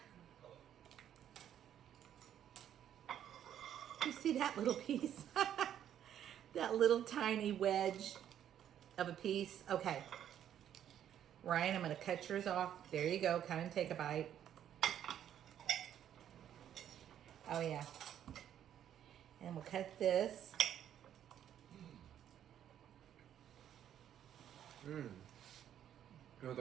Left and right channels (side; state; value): left; quieter; 10.2 dB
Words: You see that little piece? That little tiny wedge of a piece. Okay. Ryan, I'm going to cut yours off. There you go. Come and take a bite. Oh, yeah. And we'll cut this. You know what